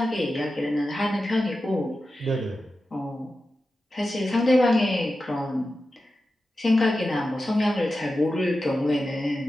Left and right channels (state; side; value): normal; both; correlation 0.92